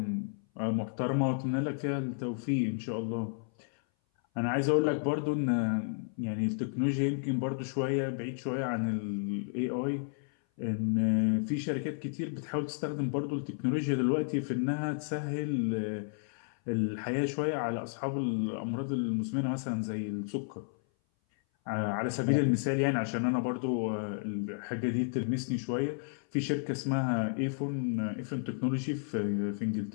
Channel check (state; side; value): silent; right; 56 dB below the other